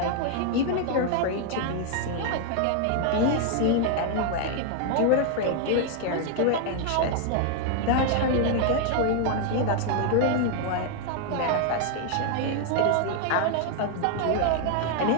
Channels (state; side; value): different; both; correlation 0.00